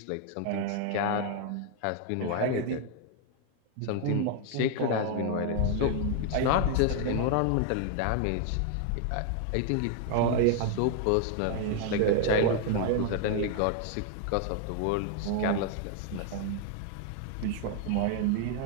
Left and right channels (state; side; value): different; both; correlation 0.00